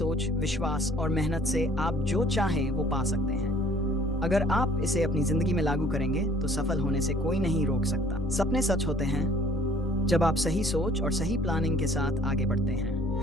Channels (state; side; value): noise; right; hum, 25 dB below the sound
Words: विश्वास और मेहनत से आप जो चाहें वो पा सकते हैं। अगर आप इसे अपनी जिंदगी में लागू करेंगे तो सफल होने से कोई नहीं रोक सकता। सपने सच होते हैं जब आप सही सोच और सही प्लानिंग के साथ आगे बढ़ते